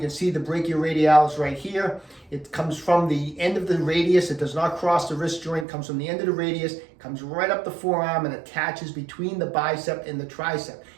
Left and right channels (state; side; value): drops out; left; at 5.7 s